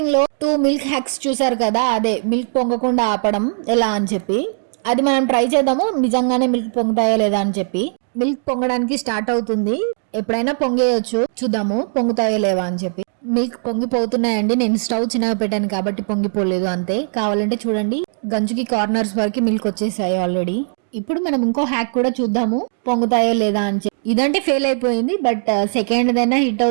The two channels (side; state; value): left; silent; digital silence